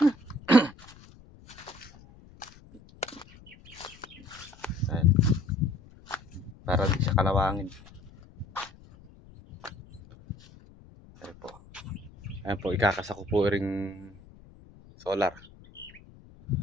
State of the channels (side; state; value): left; noise; rumble, 22 dB below the sound